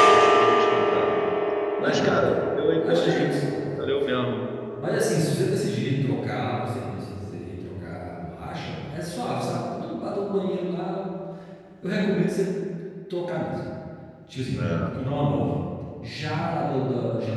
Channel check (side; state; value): both; identical; correlation 1.00